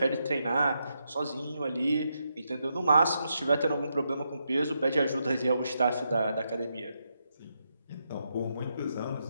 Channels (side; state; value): both; inverted; correlation -0.82